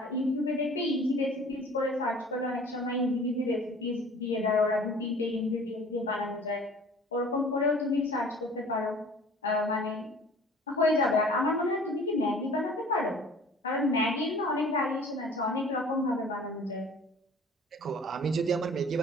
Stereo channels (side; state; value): both; normal; correlation 0.48